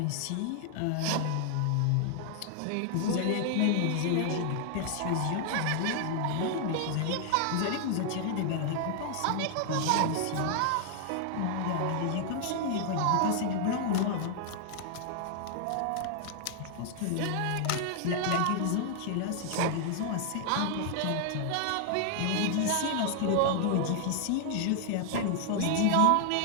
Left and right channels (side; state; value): both; different; correlation 0.00